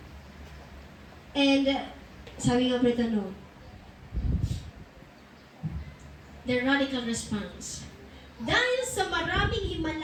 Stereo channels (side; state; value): both; identical; correlation 1.00